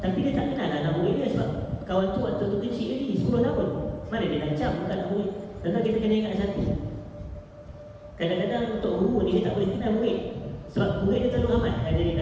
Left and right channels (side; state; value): both; identical; correlation 1.00